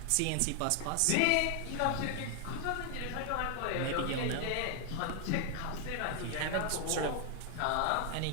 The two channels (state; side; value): different; both; correlation 0.00